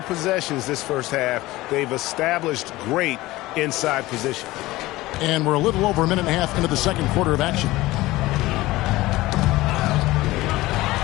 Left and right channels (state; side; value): quieter; right; 18.5 dB